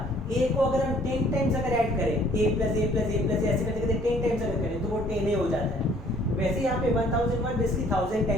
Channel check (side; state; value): both; normal; correlation 0.59